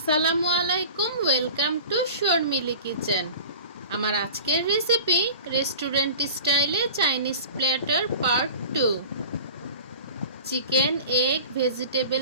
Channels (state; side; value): inverted; both; correlation -0.38